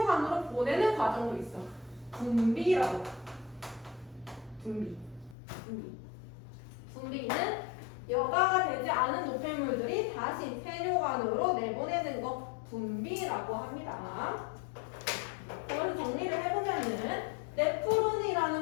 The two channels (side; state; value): right; drops out; at 5.4 s